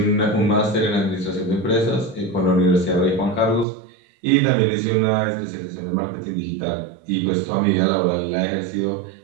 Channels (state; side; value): drops out; left; at 3.7 s